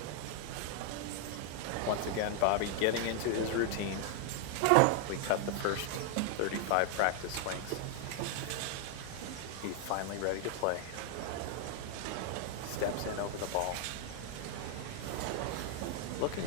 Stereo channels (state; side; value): different; both; correlation 0.00